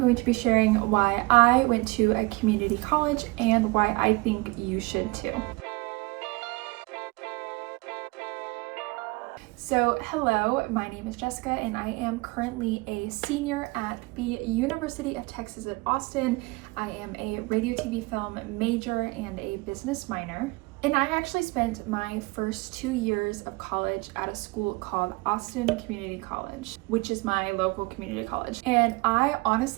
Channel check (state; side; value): quieter; left; 24.4 dB